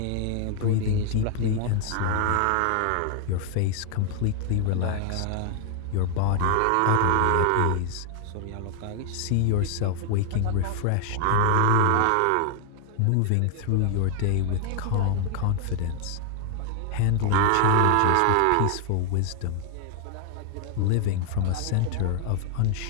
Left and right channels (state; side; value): different; both; correlation 0.00